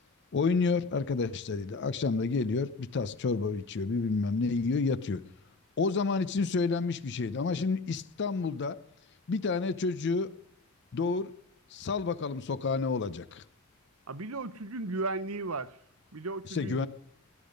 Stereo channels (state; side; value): quieter; right; 3.5 dB